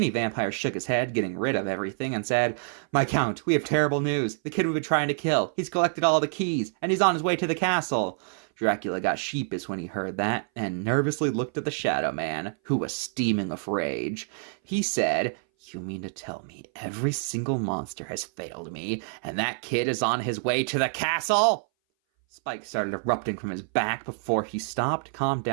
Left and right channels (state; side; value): silent; left; 59 dB below the other